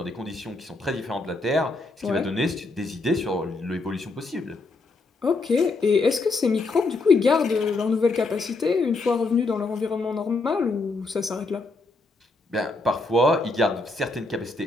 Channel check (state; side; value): quieter; right; 3.4 dB